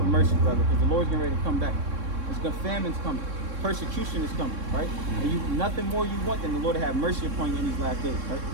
mercy, brother, because the Lord's getting ready to come back. Famine's coming. Persecution is coming, right? And nothing more you want than the Lord to have mercy upon you in these last days, right?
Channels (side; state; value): left; late; 3.6 ms